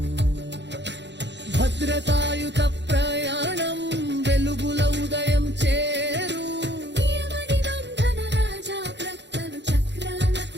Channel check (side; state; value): left; late; 0.51 ms